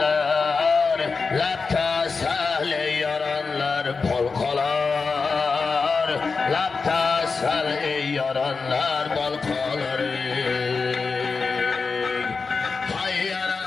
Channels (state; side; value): quieter; right; 4.6 dB